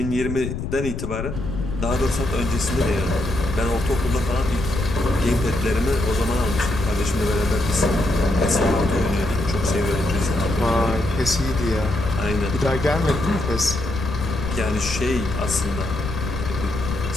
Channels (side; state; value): left; noise; rumble, 5 dB below the sound